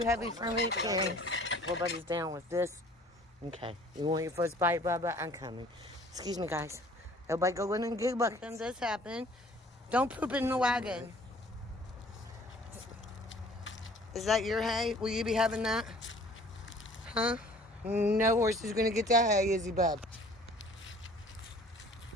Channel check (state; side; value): normal; both; correlation 0.52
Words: heavy for me to carry. Everybody's down with this. Okay. You want your first bite, Bubba? I'm coming. Excuse me, guys. Everybody go in and get buckets. When this happen, don't poop in the wagon. Is that your hay? Will you be having that? Huh? No horse is going to get that hay, is he, bub?